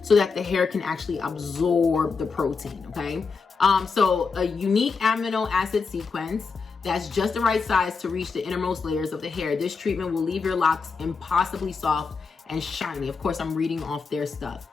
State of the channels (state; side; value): quieter; right; 4.9 dB